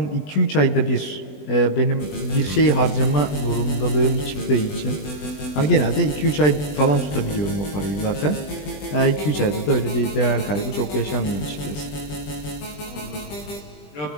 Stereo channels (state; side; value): late; right; 20 ms